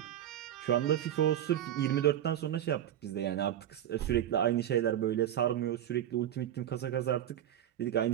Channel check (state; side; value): quieter; left; 11.2 dB